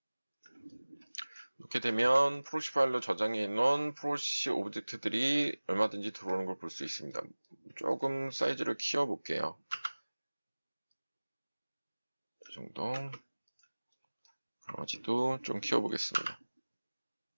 이렇게 되면 프로시 파일로 저장해 놓은 프로시 오브젝트들이 얼마든지 들어오는 걸 볼 수 있습니다. 조금 사이즈를 키워 볼게요. 이 정도. 강아지도 좀 키워 보겠습니다.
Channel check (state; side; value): inverted; both; correlation -1.00